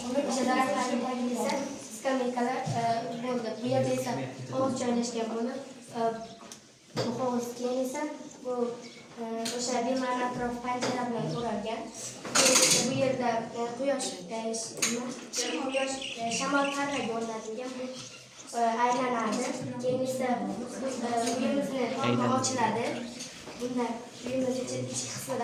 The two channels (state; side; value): identical; both; correlation 1.00